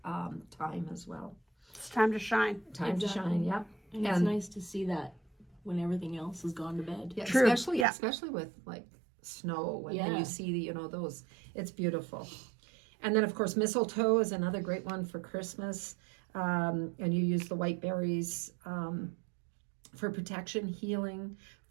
time as well. It's time to shine. Time to shine, yeah. And it's nice to see that when everything else has gone to bed. Yeah, True. Especially with like snow and then you see those, it's beautiful. And then of course mistletoe is another great one for Christmas. And you use the white berries for protection, healing,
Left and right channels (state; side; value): drops out; left; at 7.9 s